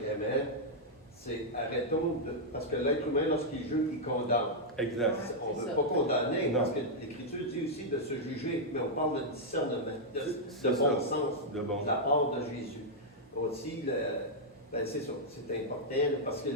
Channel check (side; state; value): both; normal; correlation -0.05